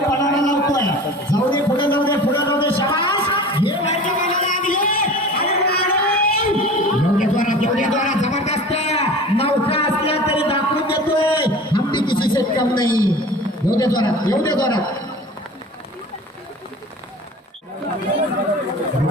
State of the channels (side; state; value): both; normal; correlation 0.38